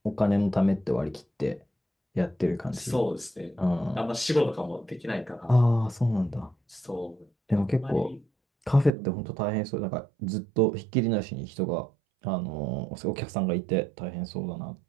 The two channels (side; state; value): left; drops out; at 8.9 s